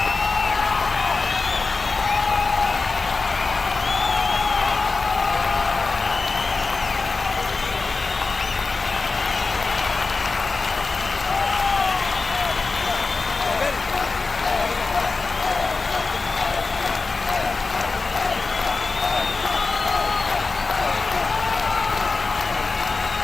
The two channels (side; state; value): right; quieter; 4.0 dB